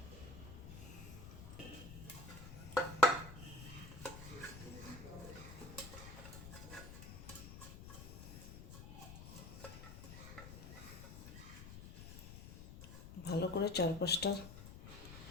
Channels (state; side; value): noise; left; rumble, 11 dB below the sound